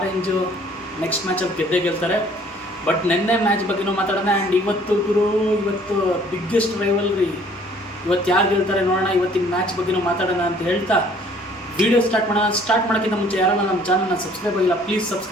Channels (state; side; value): normal; both; correlation 0.57